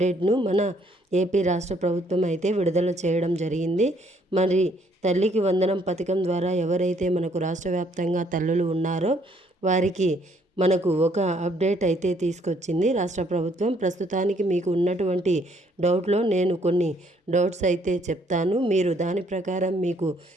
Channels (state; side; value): normal; both; correlation 0.66